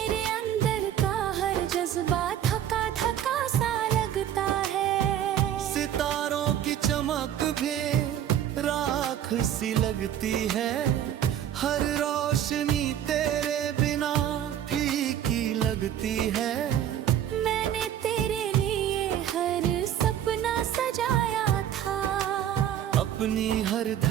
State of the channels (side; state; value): left; quieter; 10.4 dB